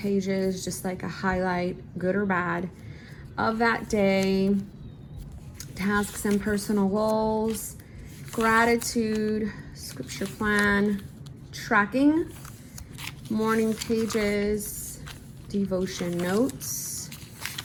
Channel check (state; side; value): identical; both; correlation 1.00